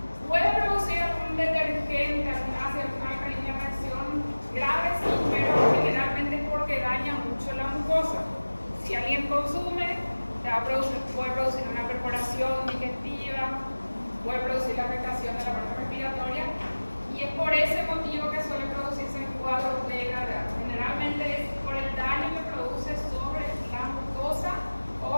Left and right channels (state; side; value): inverted; both; correlation -1.00